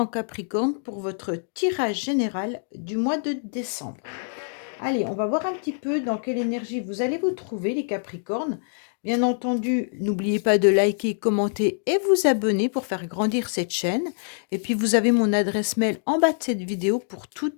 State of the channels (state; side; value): silent; right; digital silence